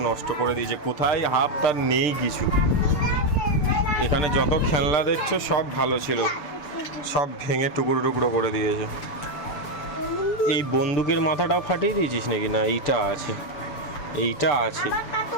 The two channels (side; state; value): right; late; 6.8 ms